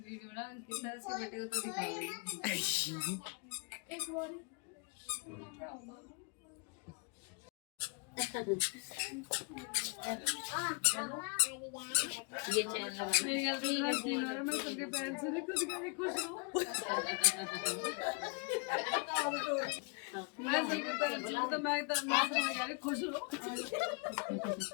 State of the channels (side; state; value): right; quieter; 31.3 dB